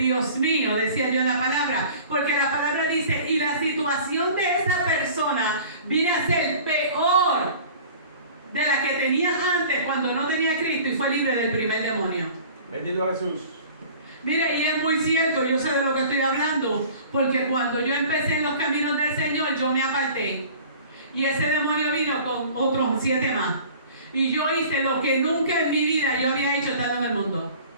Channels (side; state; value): both; inverted; correlation -0.45